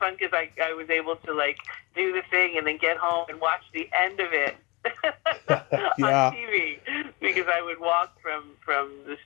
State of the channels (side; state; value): right; quieter; 25.6 dB